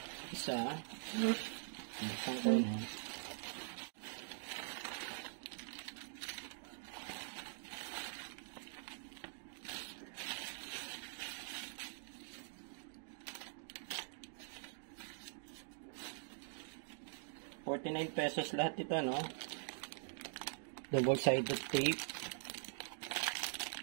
isa. Buksan ko, no. ₱49 lahat ito, no. Double-sided tape.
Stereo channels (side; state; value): left; silent; digital silence